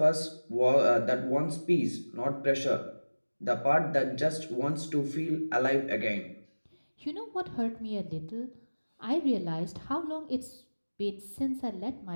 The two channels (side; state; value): both; inverted; correlation -1.00